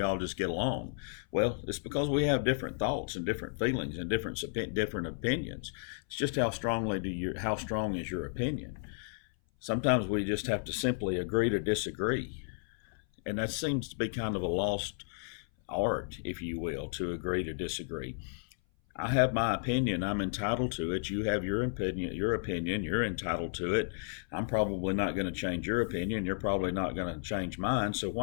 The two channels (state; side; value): silent; right; 56 dB below the other